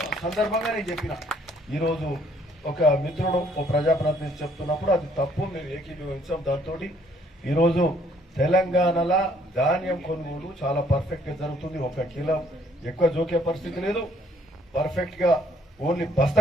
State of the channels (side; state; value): both; normal; correlation 0.64